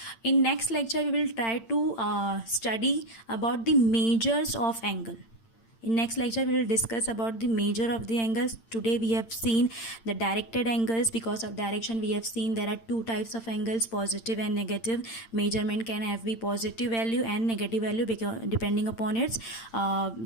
In next lecture we will try to study about the measures of angle. In next lecture we will discuss about the measure of the angles. Today we have seen the directed angles. Because of direction we have seen there are two types of angles, positive and negative. Measurement can have be positive value and negative value because depending upon its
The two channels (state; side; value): late; right; 8.8 ms